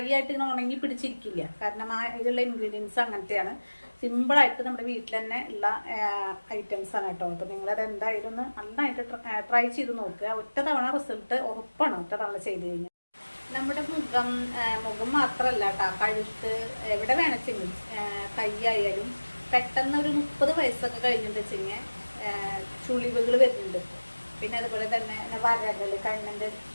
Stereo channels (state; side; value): inverted; both; correlation -1.00